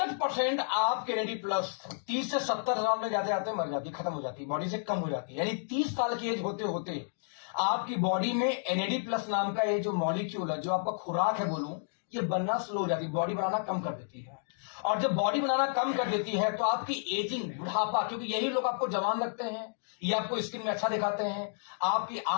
आपके एनएडी प्लस 30 से 70 साल में जाते जाते मर जाती, खत्म हो जाती, बॉडी से कम हो जाती है। यानी 30 साल की एज होते होते आपकी बॉडी में एनएडी प्लस नाम का ये जो मॉलिक्यूल है, जो आपका खुराक है बोलूं, ये बनना स्लो हो जाती, बॉडी बनाना कम कर देती है। और जब बॉडी बनाना कम कर देती है तो आपकी एजिंग, बुढ़ापा, क्योंकि यही लोग आपको जवान लगते हैं, ये आपको स्किन में अच्छा दिखाते हैं, आपकी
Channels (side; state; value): right; silent; digital silence